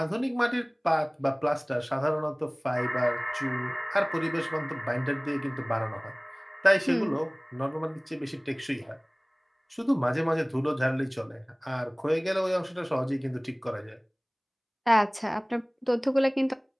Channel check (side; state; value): both; identical; correlation 1.00